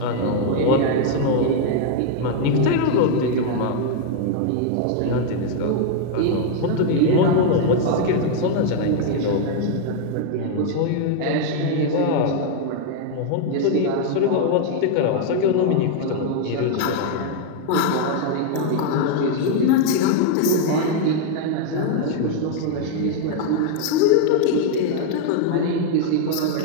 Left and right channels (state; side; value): different; both; correlation 0.00